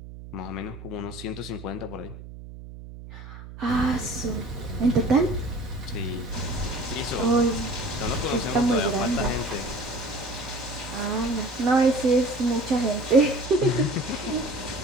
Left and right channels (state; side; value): noise; right; hum, 14 dB below the sound